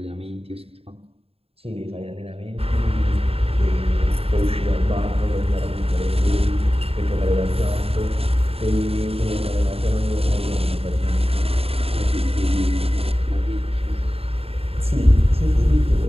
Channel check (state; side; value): late; left; 0.28 ms